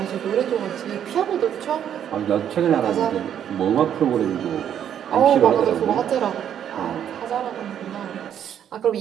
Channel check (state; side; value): quieter; left; 9.5 dB